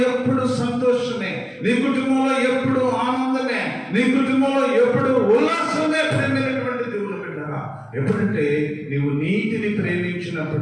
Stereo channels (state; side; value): identical; both; correlation 1.00